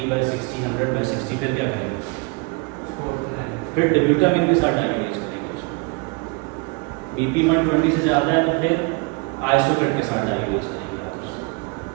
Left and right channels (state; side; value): quieter; left; 29.4 dB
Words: 100/60, फिर क्या करेंगे? फिर डिब्यूटामिन के साथ डायबिटीज करेंगे उसको। BP 120 से ज़्यादा है तो फिर आइसोकेट के साथ डायबिटीज करेंगे आप उसको।